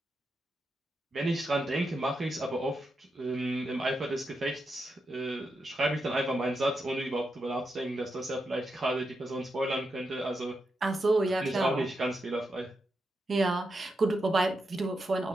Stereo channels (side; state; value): both; normal; correlation 0.86